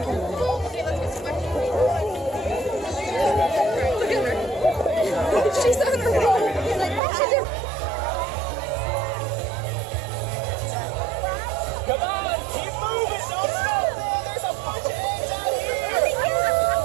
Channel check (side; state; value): left; drops out; at 7.0 s